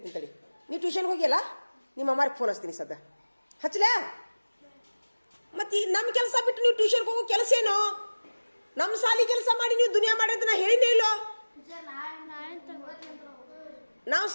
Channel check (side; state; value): both; inverted; correlation -1.00